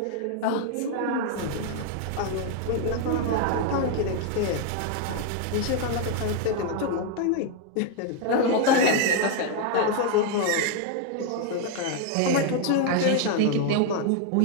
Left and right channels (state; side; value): different; both; correlation 0.00